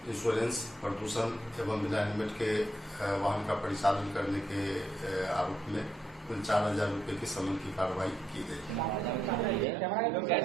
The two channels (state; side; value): normal; both; correlation 0.78